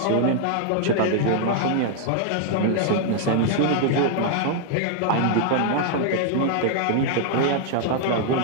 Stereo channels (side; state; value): both; different; correlation 0.00